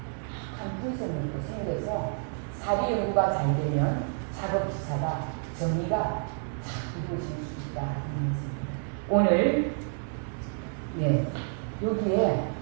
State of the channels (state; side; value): silent; left; 58 dB below the other